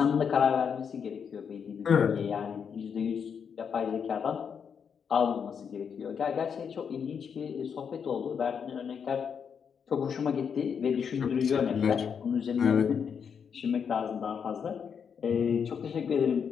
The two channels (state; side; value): quieter; right; 7.0 dB